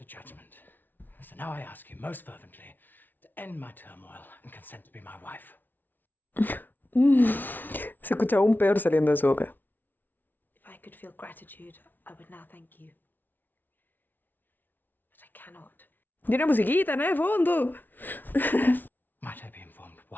judgment. So now I ask you most fervently to end my turmoil and consent to be my wife. Se escucha aún peor saliendo de su boca. If I could feel gratitude, I would now thank you. But I cannot. Y una musiquita, ¿no? De fondo. Might I be informed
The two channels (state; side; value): late; right; 0.088 ms